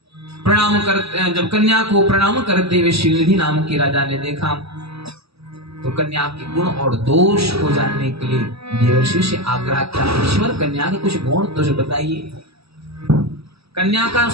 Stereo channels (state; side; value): late; left; 0.78 ms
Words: प्रणाम कर, जब कन्या को प्रणाम करते हुए शीलनिधि नाम के राजा ने देखा तो कन्या के गुण और दोष को जानने के लिए देवर्षि से आग्रह किया, ईश्वर कन्या के कुछ गुण दोष बताइए। कन्या का